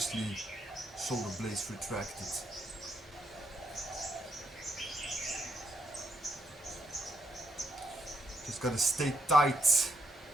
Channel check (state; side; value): normal; both; correlation 0.77